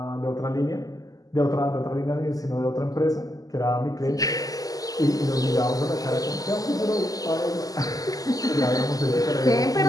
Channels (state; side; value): late; right; 0.17 ms